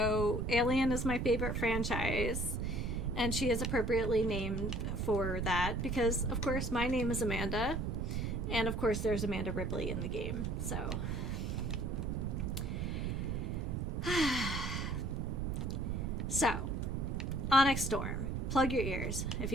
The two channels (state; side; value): noise; right; rumble, 1 dB below the sound